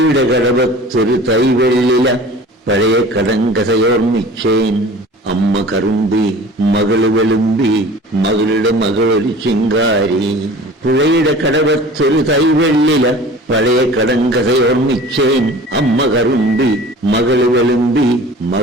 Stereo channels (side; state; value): both; normal; correlation 0.42